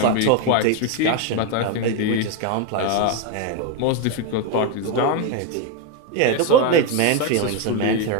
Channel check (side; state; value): both; different; correlation 0.02